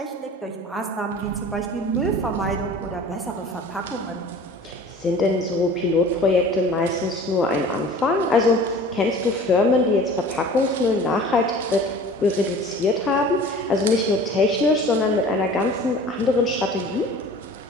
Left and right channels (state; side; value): normal; both; correlation 0.43